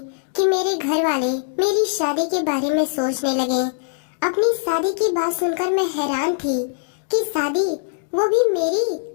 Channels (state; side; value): silent; right; digital silence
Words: कि मेरे घर वाले मेरी शादी के बारे में सोचने लगे। अपनी शादी की बात सुनकर मैं हैरान थी कि शादी, वो भी मेरी,